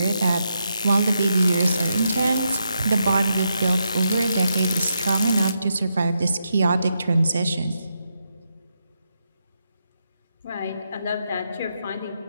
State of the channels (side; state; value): both; inverted; correlation -0.83